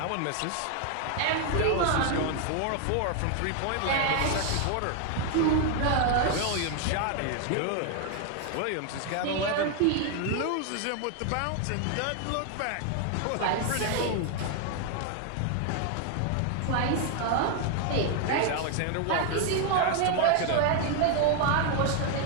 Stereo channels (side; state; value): both; different; correlation 0.00